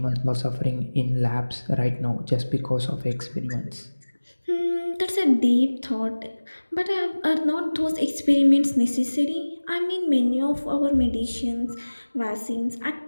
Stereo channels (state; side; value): inverted; both; correlation -1.00